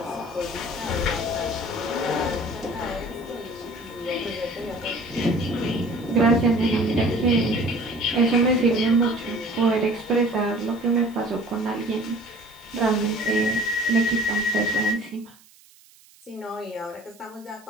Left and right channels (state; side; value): noise; right; hiss, 27 dB below the sound